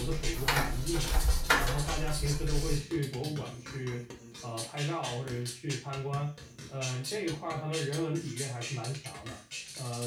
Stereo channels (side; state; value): both; identical; correlation 1.00